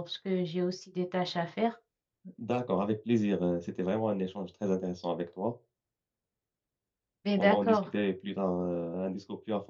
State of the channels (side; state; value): both; identical; correlation 1.00